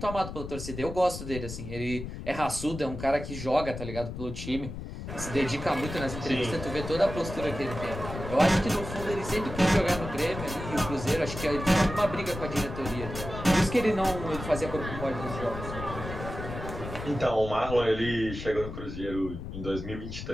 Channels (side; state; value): left; noise; rumble, 8 dB below the sound